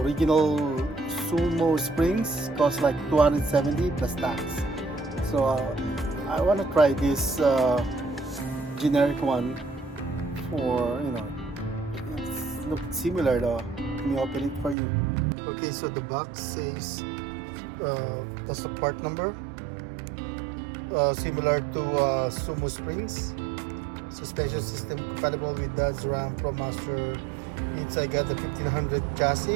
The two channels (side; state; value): left; drops out; at 14.8 s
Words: Sumosprings cost like 270 plus tax. So I want to try this generic one for, it looks similar though. Let me open it for you. Okay, so the box says that's the part number, similar to Sumosprings. Suspension system compatible with Dodge Ram ProMaster. I got the 1500